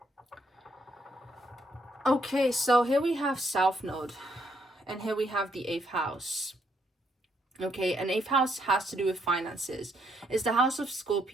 Okay, so here we have South Node, and here we have the 8th house. Okay, and 8th house has to do with finances. It's the house of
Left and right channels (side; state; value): both; normal; correlation 0.73